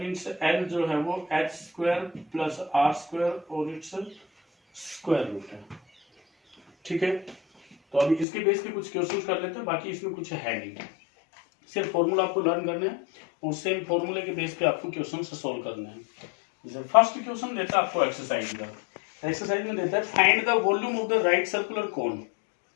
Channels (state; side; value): drops out; right; at 8.2 s